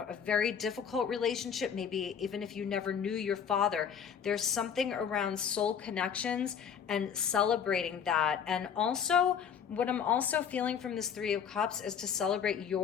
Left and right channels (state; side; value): quieter; right; 7.5 dB